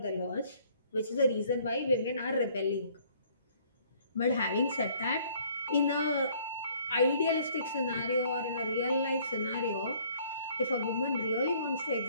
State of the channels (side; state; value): both; inverted; correlation -0.59